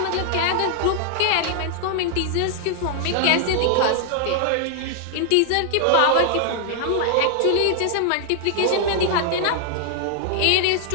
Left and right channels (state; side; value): different; both; correlation 0.00